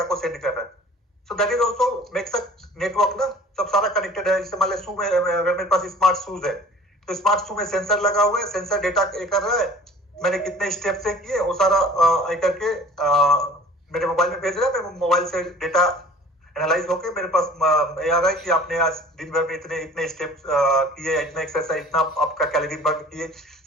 को सेंड कर रहा है. So that is also makes a network ना. सब सारा कनेक्टेड है. जैसे मान लो शू में, अगर मेरे पास स्मार्ट शूज है तो स्मार्ट शू में सेंसर लगा हुआ है, सेंसर डेटा कर रहा है, मैंने कितने स्टेप से किए वो सारा करके मेरे मोबाइल में भेज रहा है. मैं मोबाइल से डेटा एनालाइज होके मेरे पास ये आ रहा है कि आपने आज दिन भर में इतने स्टेप्स किए, इतना एक्सरसाइज, इतना आपका कैलोरी बर्न किए,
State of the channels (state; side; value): normal; both; correlation 0.47